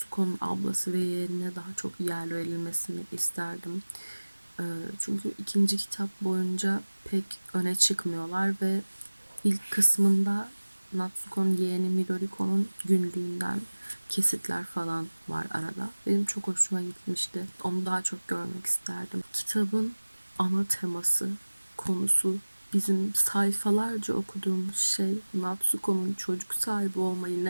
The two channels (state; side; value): inverted; both; correlation -1.00